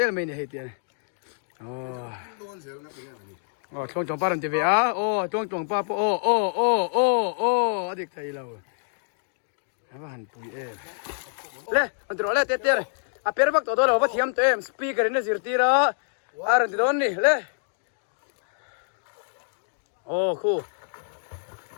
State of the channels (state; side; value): silent; right; digital silence